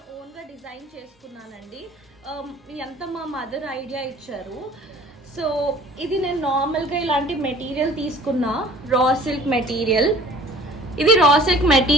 ఓన్గా డిజైన్ చేసుకున్నానండి. ఎంత మా మదర్ ఐడియా ఇచ్చారు. సో ఇది నేను నార్మల్గా ఇలాంటి మెటీరియల్ తీసుకున్నా, రా సిల్క్ మెటీరియల్. ఇది రా సిల్క్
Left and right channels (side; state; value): both; normal; correlation 0.50